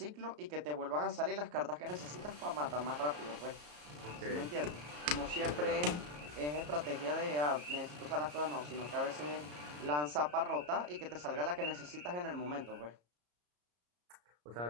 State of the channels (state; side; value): late; left; 34 ms